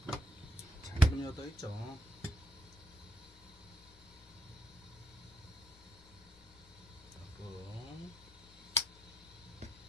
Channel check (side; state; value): both; normal; correlation 0.74